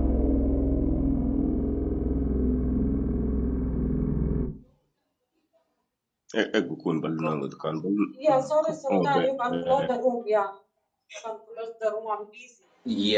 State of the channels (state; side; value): identical; both; correlation 1.00